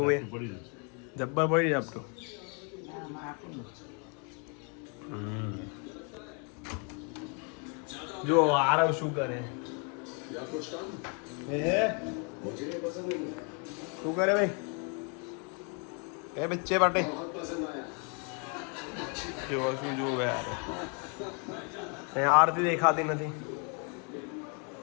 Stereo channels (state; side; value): quieter; right; 36.6 dB